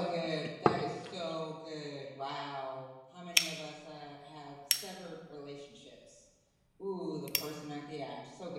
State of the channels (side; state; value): both; identical; correlation 1.00